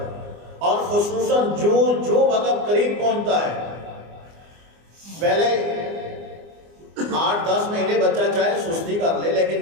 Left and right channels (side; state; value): left; late; 24 ms